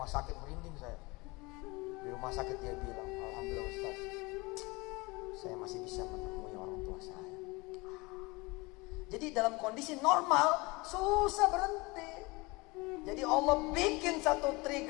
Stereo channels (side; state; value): right; quieter; 24.7 dB